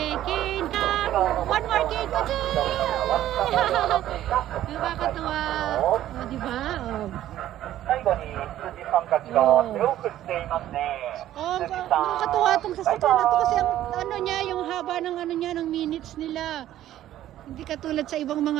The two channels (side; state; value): left; quieter; 12.9 dB